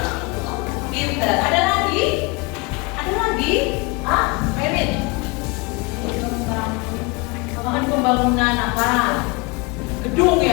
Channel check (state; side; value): quieter; right; 27.9 dB